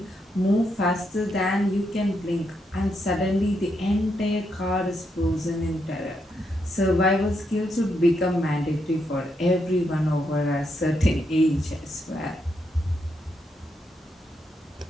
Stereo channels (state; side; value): normal; both; correlation 0.80